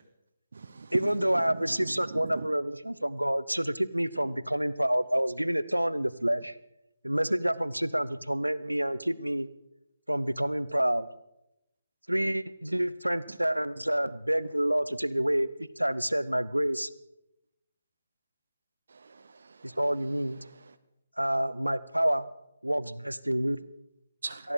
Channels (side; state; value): both; inverted; correlation -0.99